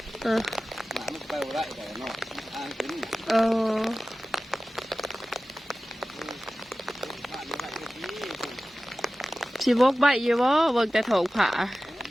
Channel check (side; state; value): both; normal; correlation 0.96